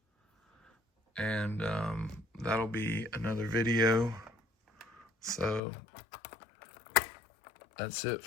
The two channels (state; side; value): drops out; right; at 5.6 s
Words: And that'll be another video. So that's it